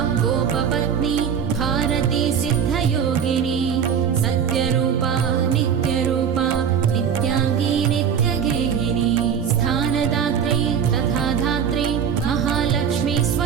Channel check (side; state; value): left; quieter; 7.7 dB